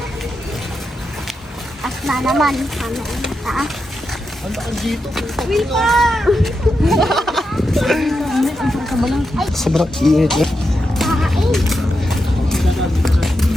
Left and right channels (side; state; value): both; normal; correlation 0.87